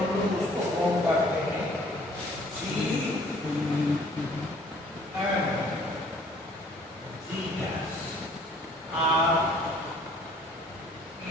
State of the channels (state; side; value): normal; both; correlation 0.56